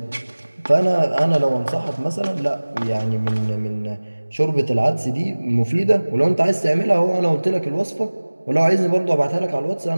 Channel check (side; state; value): both; inverted; correlation -1.00